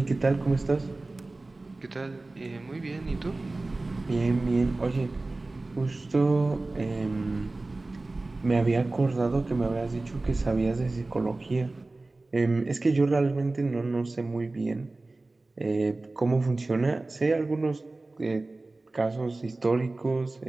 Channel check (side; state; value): left; quieter; 3.1 dB